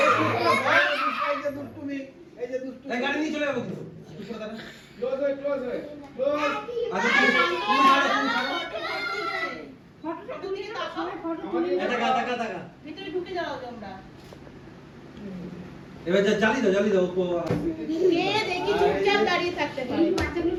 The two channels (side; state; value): both; identical; correlation 1.00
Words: এই গাড়ি নিয়ে চলে যাবো কিন্তু ক্লোজ হয় আচ্ছা তুমি ভিতরে ঢুকে যাও তোমরা এবার জ্বালি দাও কে দেখি চুপচাপ দাঁড়িয়ে থাকতে পারে